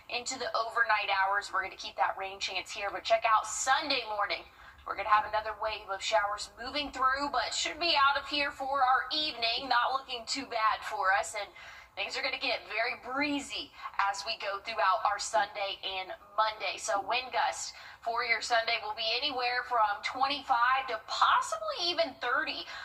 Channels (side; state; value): both; identical; correlation 1.00